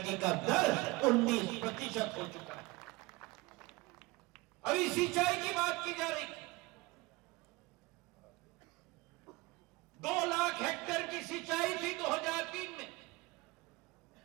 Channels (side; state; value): left; quieter; 22.5 dB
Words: का दर 19% हो चुका है। अभी सिंचाई की बात की जा रही, 2 लाख हेक्टेयर की सिंचाई थी 2003 में,